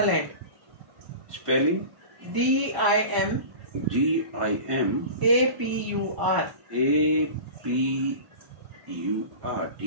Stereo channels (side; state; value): left; late; 1.0 ms